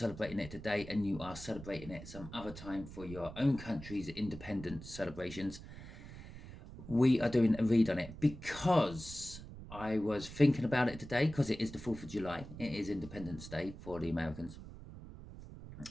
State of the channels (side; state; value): right; noise; rumble, 13 dB below the sound